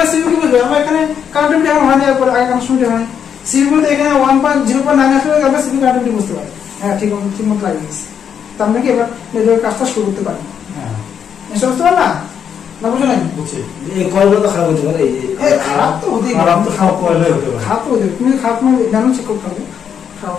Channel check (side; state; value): right; quieter; 7.9 dB